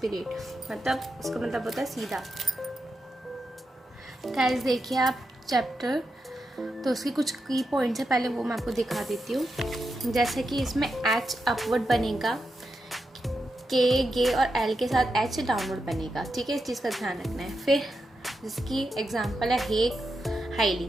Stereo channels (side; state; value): both; normal; correlation 0.87